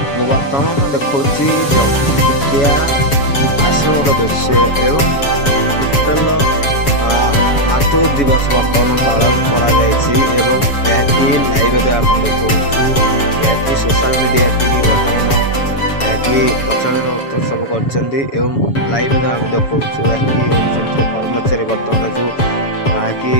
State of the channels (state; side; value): late; right; 7.1 ms